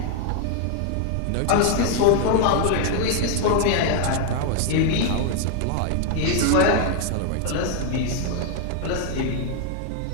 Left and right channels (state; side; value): different; both; correlation 0.00